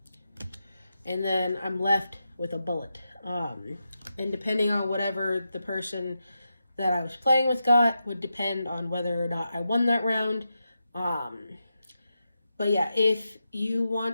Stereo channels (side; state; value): both; inverted; correlation -0.88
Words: And then I'm left with a bullet. And depending on whatever the person that I was playing with got would depend on whether or not I won that round. But yeah, if you